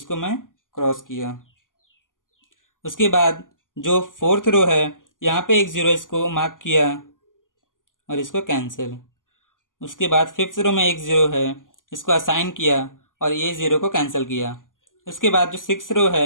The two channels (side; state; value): right; late; 0.88 ms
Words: मैं क्रॉस किया। उसके बाद जो फोर्थ रो है यहाँ पे 1 0, इसको मार्क किया और इसको कैंसिल। उसके बाद फिफ्थ रो में 1 0 है, इसको असाइन किया और ये 0 को कैंसिल किया। उसके बाद जो 6 रो